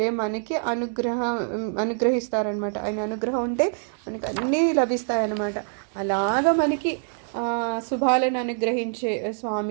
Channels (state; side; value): silent; left; digital silence